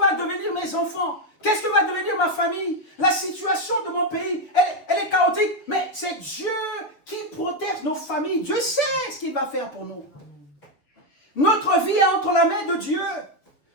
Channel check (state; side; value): late; right; 7.1 ms